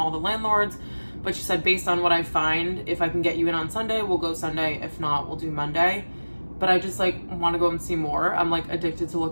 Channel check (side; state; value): both; inverted; correlation -1.00